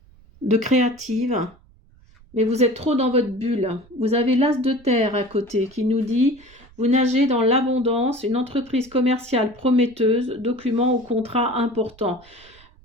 de créative. Mais vous êtes trop dans votre bulle. Vous avez l'as de terre à côté qui nous dit « Vous nagez dans l'abondance, une entreprise commerciale prometteuse, documents ou contrats importants.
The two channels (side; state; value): right; noise; rumble, 27 dB below the sound